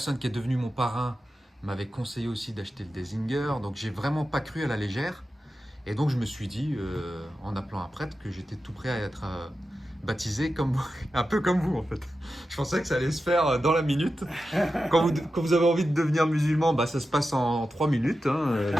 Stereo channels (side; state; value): both; normal; correlation 0.92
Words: qui est devenue mon parrain m'avait conseillé aussi d'acheter le Désinger. Donc j'ai vraiment pas cru à la légère. Et donc je me suis dit, en appelant un prêtre, que j'étais tout prêt à être baptisé un peu comme vous en fait. Je pensais que ça allait se faire dans la minute. Quand vous avez envie de devenir musulman, ça se passe en 3 minutes. Hein.